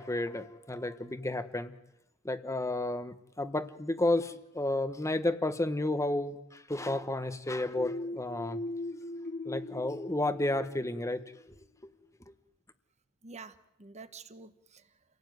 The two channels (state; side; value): normal; both; correlation 0.77